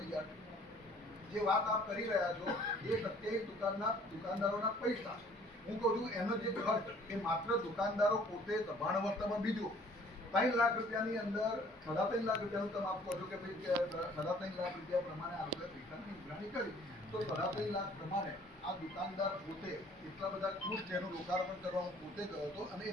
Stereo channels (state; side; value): normal; both; correlation 0.56